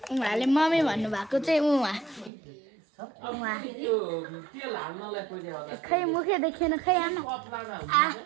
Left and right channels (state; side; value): drops out; left; at 2.3 s